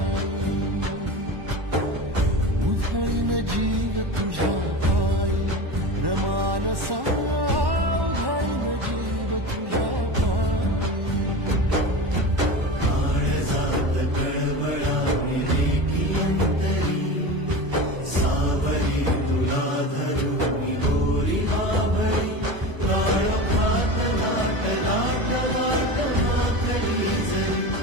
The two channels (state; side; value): late; left; 1.1 ms